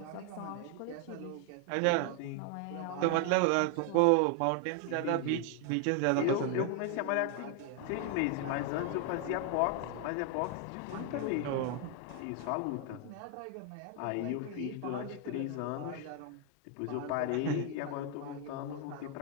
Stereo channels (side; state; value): both; different; correlation 0.01